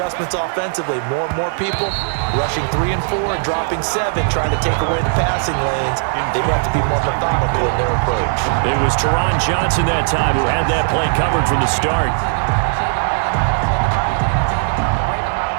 offensively. More and more people rushing 3 and 4 and dropping 7, trying to take away the passing lanes. They have to be more methodical in their approach. It was Teron Johnson that time who had that play covered from the start.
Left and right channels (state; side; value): silent; left; digital silence